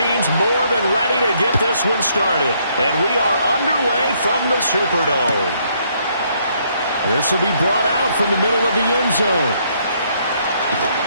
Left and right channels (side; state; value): both; inverted; correlation -0.70